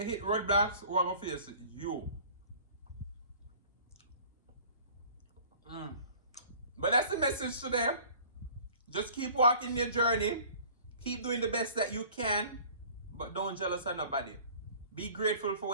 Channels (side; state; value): both; inverted; correlation -0.49